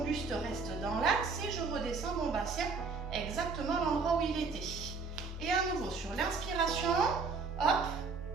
buste reste dans l'axe et je redescends mon bassin exactement à l'endroit où il était. Et à nouveau, sur l'inspiration, hop,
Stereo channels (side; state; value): left; quieter; 4.5 dB